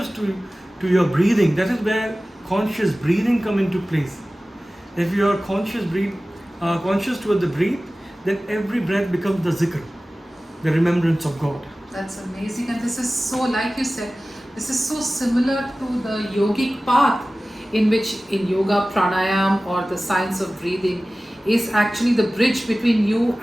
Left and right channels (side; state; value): both; normal; correlation 0.97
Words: to your breathing, that is where conscious breathing come into place. If you are conscious toward the breath, then every breath becomes the zikr, the remembrance of God. That's amazing, and this is so, like you said, This is so similar to the yogic path, in which in yoga, pranayam, or the science of breathing, is actually the bridge between you